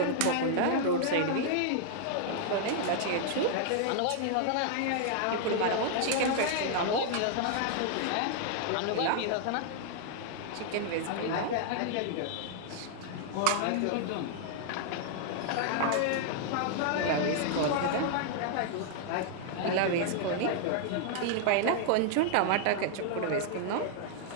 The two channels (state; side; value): different; both; correlation -0.01